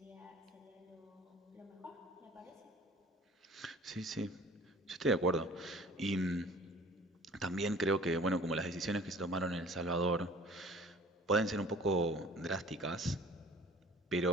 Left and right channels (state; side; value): normal; both; correlation 0.48